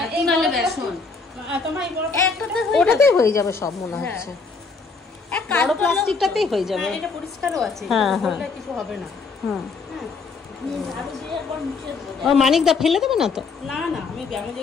ওটাতেই হয়ে যাবে সব মনে হচ্ছে, বড় প্লাস্টিকটাতেই হয়ে যাবে। এটা পরিষ্কারও আছে, কিছু হবে না। মানিকদা ফেলে দেবে না তো? না না, আমি ব্যায়ামের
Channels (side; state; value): right; quieter; 4.5 dB